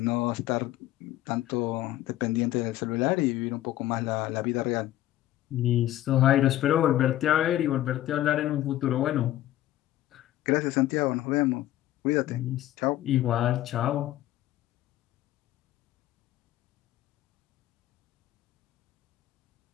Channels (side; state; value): right; quieter; 14.2 dB